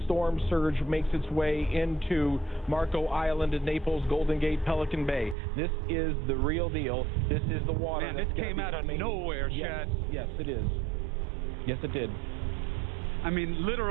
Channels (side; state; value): left; drops out; at 5.4 s